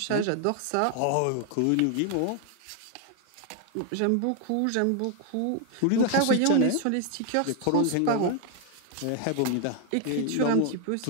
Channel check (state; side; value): different; both; correlation 0.00